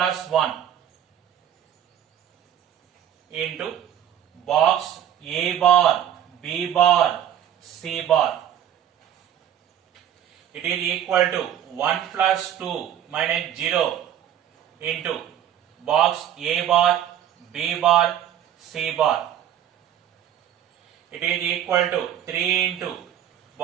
1 into box A bar, B bar, C bar. It is equal to 1 plus 2 minus 0 into box A bar, B bar, C bar. It is equal to 3 into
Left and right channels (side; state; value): left; quieter; 10.5 dB